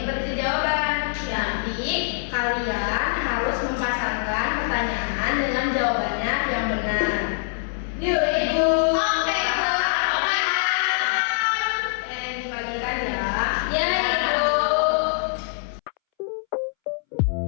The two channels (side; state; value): right; silent; 63 dB below the other